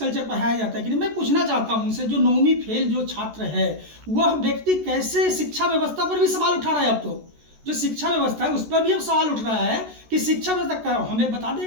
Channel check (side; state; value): left; late; 14 ms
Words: पढ़ाया जाता है कि नहीं। मैं पूछना चाहता हूं उनसे, जो 9वीं फेल जो छात्र है वह व्यक्ति कैसे शिक्षा व्यवस्था पर भी सवाल उठा रहा है। अब तो जो शिक्षा व्यवस्था है उस पर भी अब सवाल उठ रहा है कि शिक्षा व्यवस्था, हमें बता दें